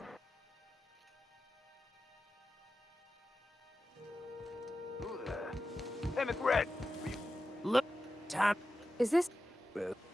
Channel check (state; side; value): normal; both; correlation 0.92